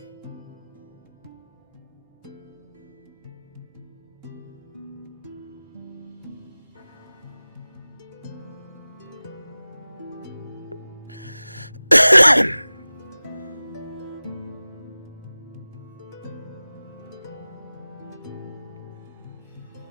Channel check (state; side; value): inverted; both; correlation -0.98